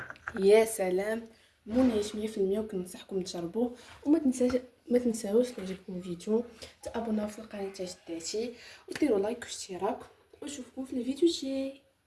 يا سلام، منعش 100%. وكننصحكم تجربوه. وما تنساوش يعجبكم الفيديو تابوناو في القناه تاع جداتي وديروا لايك واشتراك، ونشوفكم في الفيديو الجاي.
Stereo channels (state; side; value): identical; both; correlation 1.00